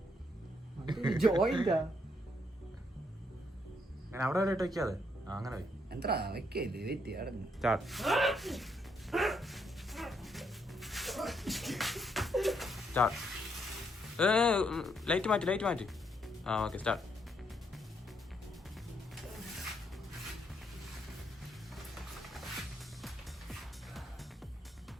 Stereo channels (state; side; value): normal; both; correlation 0.74